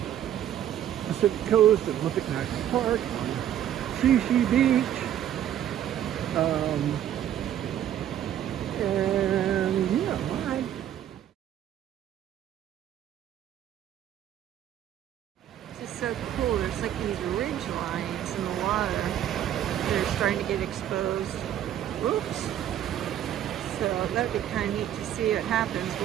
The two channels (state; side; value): quieter; left; 11.0 dB